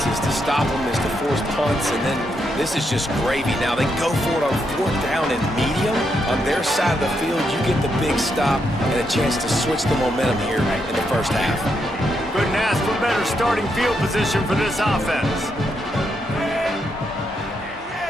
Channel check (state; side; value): normal; both; correlation 0.80